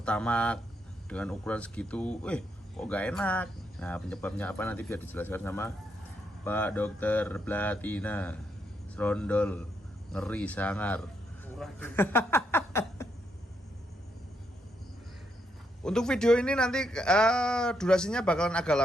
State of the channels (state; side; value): normal; both; correlation 0.78